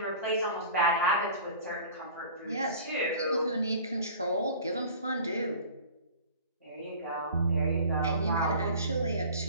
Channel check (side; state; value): both; inverted; correlation -0.42